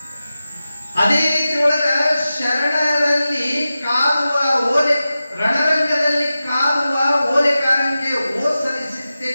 ಅದೇ ರೀತಿ ಒಳಗ ಶರಣರಲ್ಲಿ ಕಾದುವ ಓಲೆ, ರಣರಂಗದಲ್ಲಿ ಕಾದುವ ಓಲೆಕಾರನಿಗೆ ಓ ಸಲ್ಲಿಸುತ್ತೆ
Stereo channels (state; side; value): inverted; both; correlation -0.94